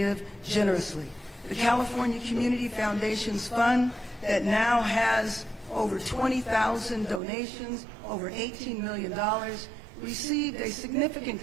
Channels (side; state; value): left; drops out; at 7.2 s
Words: generously. The California Community Foundation's fund that now has over 20,000 donations, over $18 million, received a significant